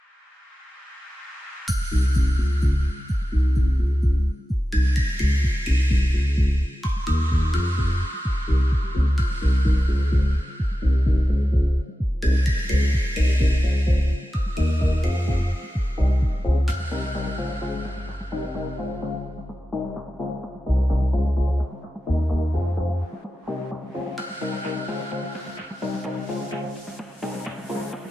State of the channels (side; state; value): both; normal; correlation 0.92